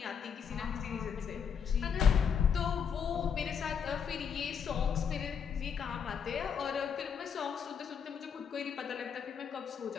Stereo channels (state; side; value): quieter; right; 7.1 dB